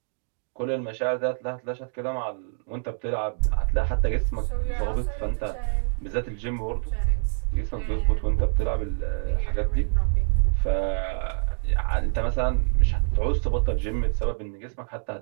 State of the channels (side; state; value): left; silent; digital silence